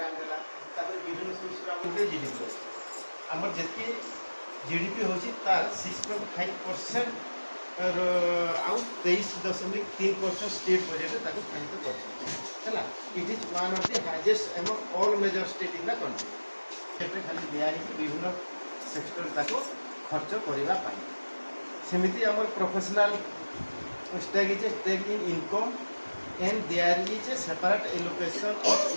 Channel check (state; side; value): inverted; both; correlation -1.00